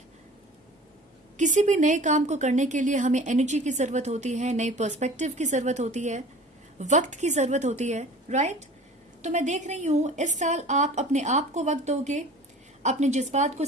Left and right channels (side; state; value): both; normal; correlation 0.43